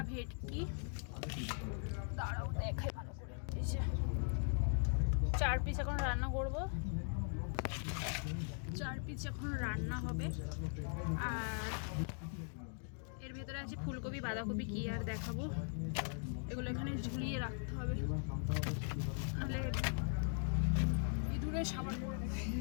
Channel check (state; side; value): silent; right; 51 dB below the other